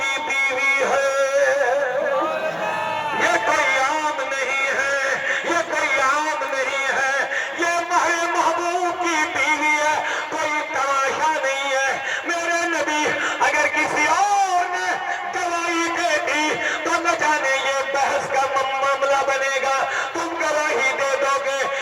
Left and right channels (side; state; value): both; identical; correlation 1.00